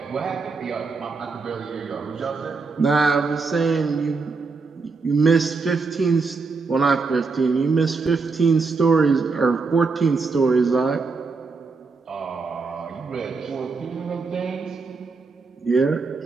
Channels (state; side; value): quieter; left; 4.4 dB